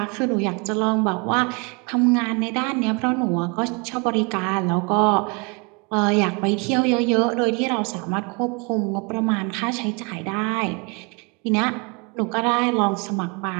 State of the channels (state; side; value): quieter; left; 31.8 dB